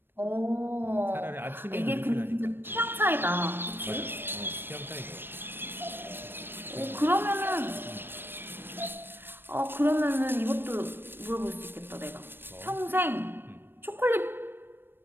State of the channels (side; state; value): left; late; 0.099 ms